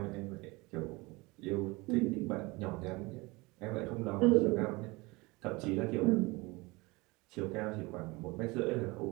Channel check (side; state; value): left; quieter; 24.0 dB